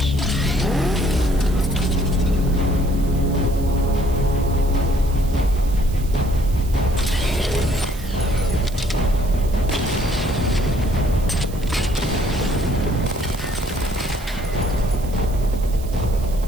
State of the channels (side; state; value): right; noise; hiss, 18 dB below the sound